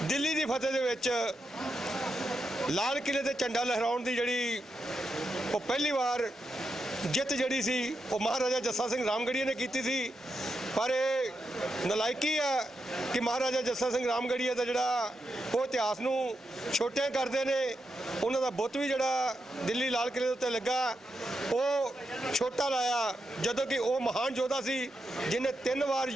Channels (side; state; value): both; normal; correlation 0.85